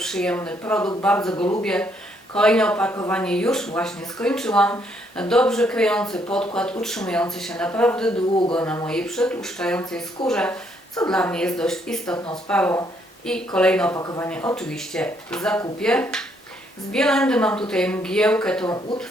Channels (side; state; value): both; normal; correlation 0.71